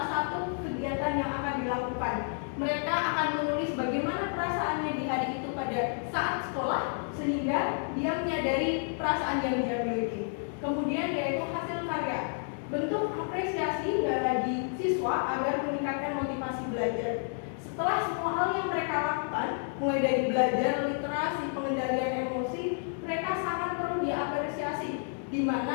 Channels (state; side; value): silent; right; 57 dB below the other